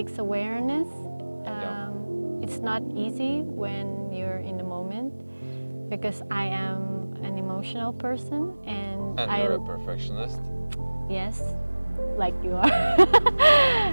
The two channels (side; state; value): both; inverted; correlation -1.00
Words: awareness. It's not easy when you're in the moment, because I am an emotional person, and you're a perfectionist. Yes, like you are.